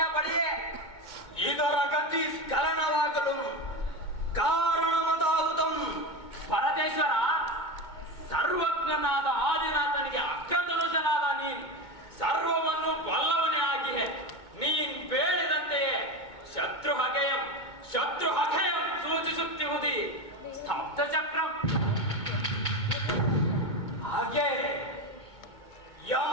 ಬಳಿಯೇ ಇದರ ಗತಿ ಸ್ಖಲನವಾಗಲು ಕಾರಣಮದಾಹುದಂ. ಪರದೇಶ್ವರ, ಸರ್ವಜ್ಞನಾದ ಆದಿನಾಥನಿಗೆ ಅಗ್ರಧನುಷನಾದ ನೀನ್ ಸರ್ವವನ್ನು ಬಲ್ಲವನೇ ಆಗಿಯೇ ನೀನ್ ಬೇಡಿದಂತೆಯೇ ಶತ್ರು ಹಗೆಯಂ ಸೂಚಿಸುತ್ತಿರುವುದಿ ಸ್ತಬ್ಧ ಚಕ್ರಂ. ಹಾಗೆ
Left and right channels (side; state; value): right; late; 2.2 ms